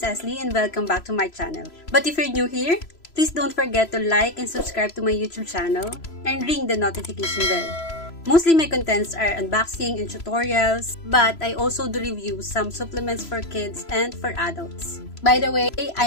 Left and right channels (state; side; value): late; right; 3.0 ms